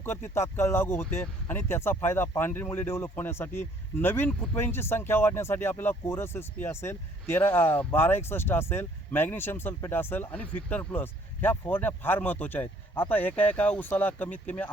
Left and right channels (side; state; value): both; normal; correlation 0.61